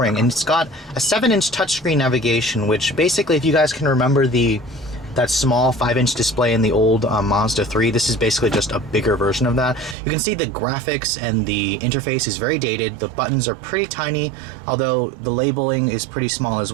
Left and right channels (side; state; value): left; drops out; at 10.0 s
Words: and it's got a 7-inch touchscreen navigation, which basically, if you guys can remember that small 5-inch display in the old Mazda 3, this is basically just a bigger version of that. You can see the graphics and the interface is very dated. The buttons are pretty tiny, although the labeling is pretty small as